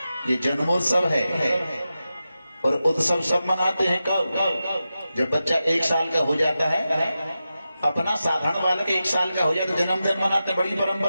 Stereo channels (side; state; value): both; inverted; correlation -0.92